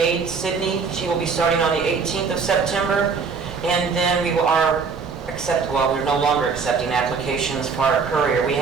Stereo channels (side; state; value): left; quieter; 5.3 dB